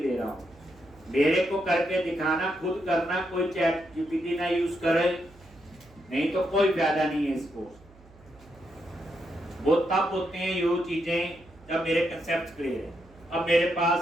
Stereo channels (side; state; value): right; noise; hum, 25 dB below the sound